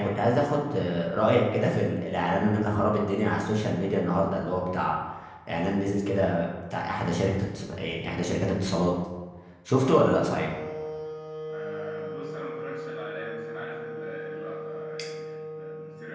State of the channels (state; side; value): identical; both; correlation 1.00